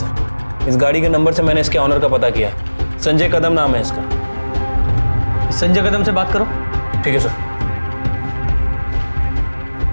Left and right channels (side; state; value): both; inverted; correlation -1.00